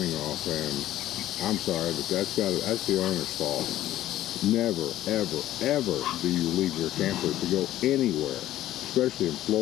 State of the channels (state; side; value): quieter; right; 13.8 dB